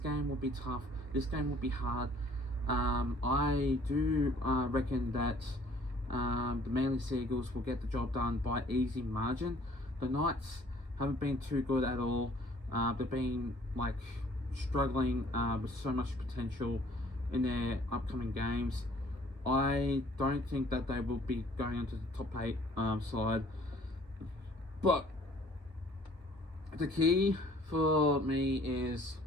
will be tough. This game will be hard. I do reckon that the Manly Seagulls will get the job done by easy margin. The Knights haven't been too good at all. They've been struggling with so much potential in their upcoming games. I don't think that they will be going into the top 8 side. But the key for me is,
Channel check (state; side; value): late; left; 1.6 ms